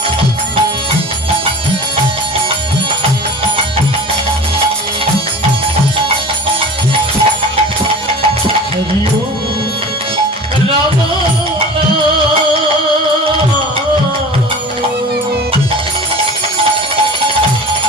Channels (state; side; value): normal; both; correlation 0.37